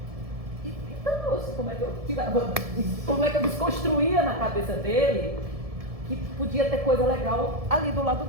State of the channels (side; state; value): left; late; 1.7 ms